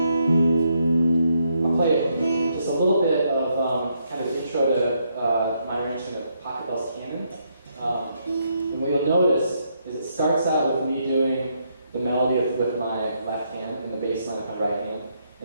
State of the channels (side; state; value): both; inverted; correlation -0.76